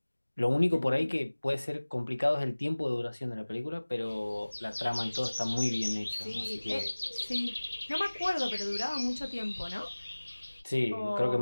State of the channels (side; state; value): both; inverted; correlation -1.00